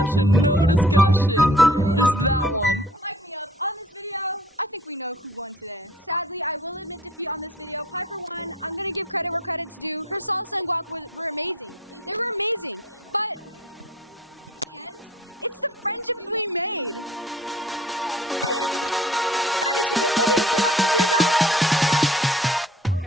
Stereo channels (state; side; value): normal; both; correlation 0.50